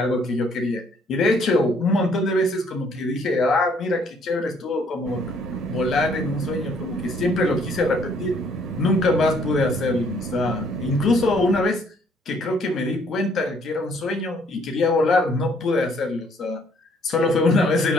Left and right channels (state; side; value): normal; both; correlation 0.64